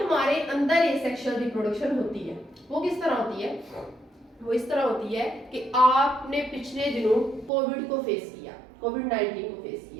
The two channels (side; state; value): left; drops out; at 7.5 s